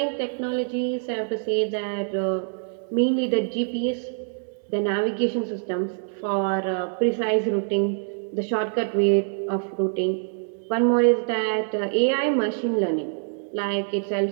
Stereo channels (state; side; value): silent; left; digital silence